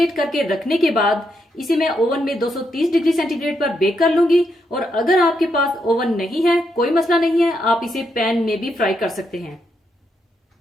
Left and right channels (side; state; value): both; normal; correlation 0.80